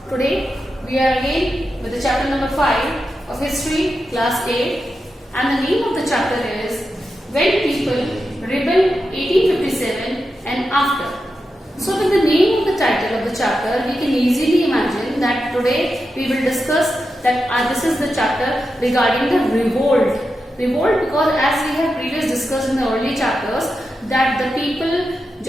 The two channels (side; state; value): both; normal; correlation 0.89